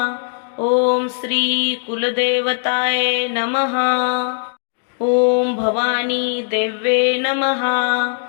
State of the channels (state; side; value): silent; right; digital silence